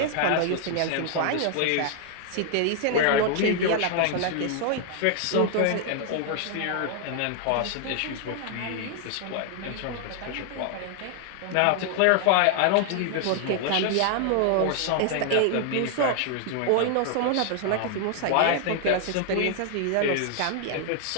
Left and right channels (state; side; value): different; both; correlation 0.00